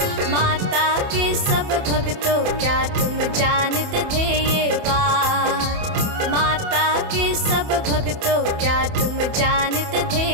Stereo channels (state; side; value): late; left; 28 ms